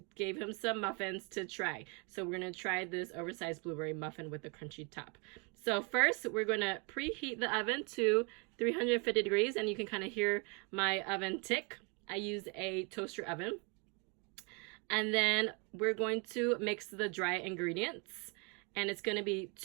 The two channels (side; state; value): left; quieter; 33.3 dB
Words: gave him some muffins to try. So we're going to try this oversized blueberry muffin with the crunchy top. So first we're going to preheat the oven to 350 degrees, and you can kind of hear my oven tick. I use a toaster oven. And then we're going to mix the dry ingredients, and it's going to be